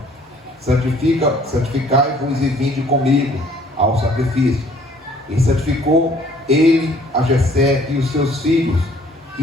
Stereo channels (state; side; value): normal; both; correlation 0.58